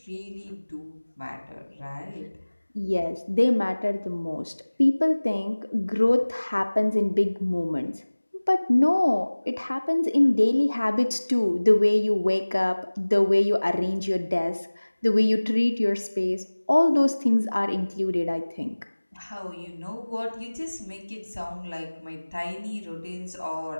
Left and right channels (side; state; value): both; inverted; correlation -1.00